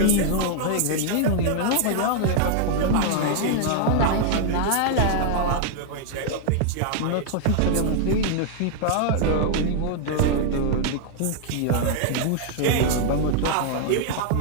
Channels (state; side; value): different; both; correlation 0.00